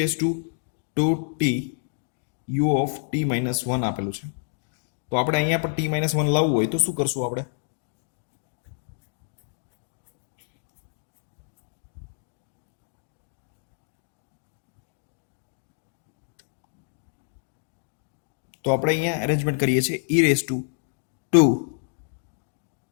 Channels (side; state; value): right; silent; digital silence